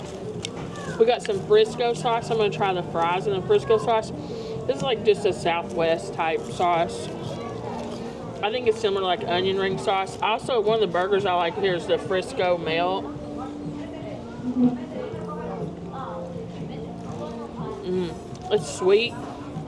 We got some Frisco sauce. I'm going to try the fries in the Frisco sauce. This is like just a Southwest type sauce. I think it's similar to like onion ring sauce. Also, one of the burgers I like here is the Frisco melt. It's sweet.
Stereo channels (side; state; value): both; identical; correlation 1.00